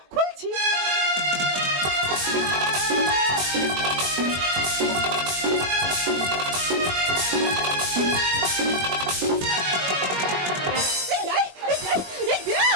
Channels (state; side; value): late; left; 21 ms